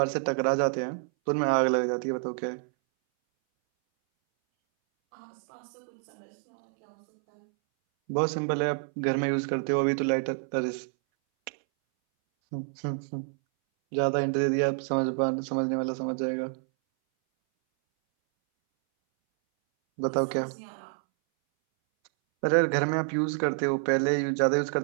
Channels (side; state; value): left; silent; 59 dB below the other